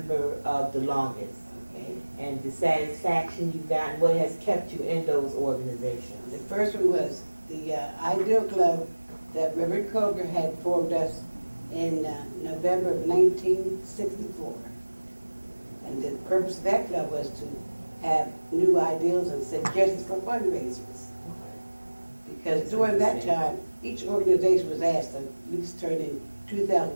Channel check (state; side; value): inverted; both; correlation -1.00